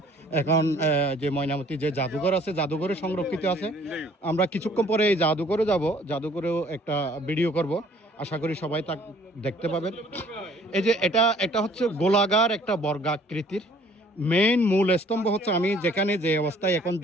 এখন যে ময়নামতি যে জাদুঘর আছে, জাদুঘরে সংরক্ষিত আছে। আমরা কিছুক্ষণ পরে এই জাদুঘরে যাব, জাদুঘরেও একটা ভিডিও করব। আশা করি সবাই তা দেখতে পাবেন। এই যে এটা হচ্ছে গোলাকার একটা বর্গাকৃতির মেইন মূল স্তম্ভ হচ্ছে, আমি যেখানে যে অবস্থায় এখন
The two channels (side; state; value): both; normal; correlation 0.57